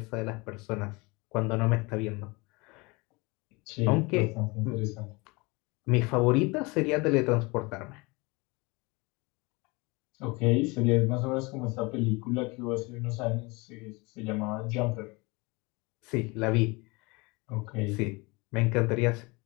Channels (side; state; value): right; quieter; 26.1 dB